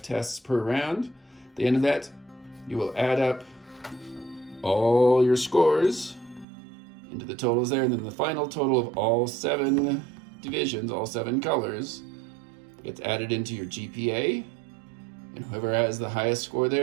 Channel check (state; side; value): drops out; left; at 6.5 s